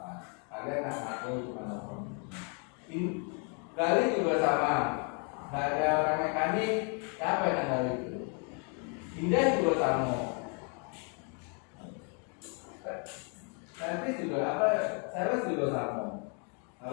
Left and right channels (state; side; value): quieter; right; 38.4 dB